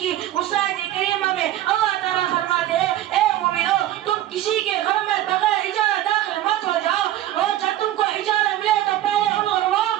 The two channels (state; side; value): quieter; left; 13.6 dB